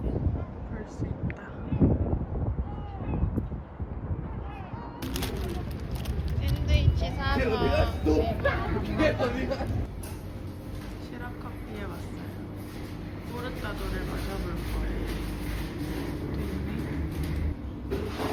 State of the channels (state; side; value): identical; both; correlation 1.00